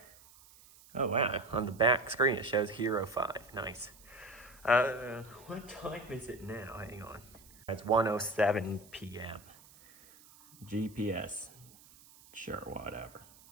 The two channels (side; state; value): right; noise; hiss, 23 dB below the sound